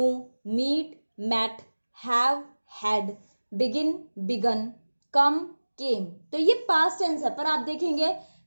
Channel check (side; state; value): both; inverted; correlation -1.00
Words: meet met, have had, begin began, come came. तो ये पास्ट टेंस है, पर आप देखेंगे